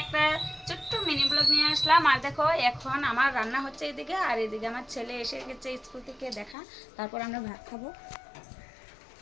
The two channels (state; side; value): drops out; right; at 6.6 s